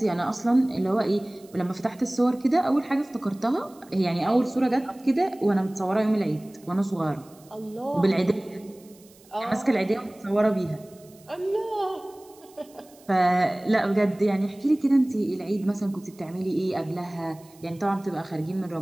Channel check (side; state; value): right; noise; hiss, 27 dB below the sound